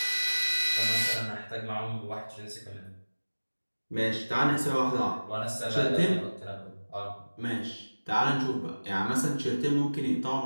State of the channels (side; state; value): both; inverted; correlation -1.00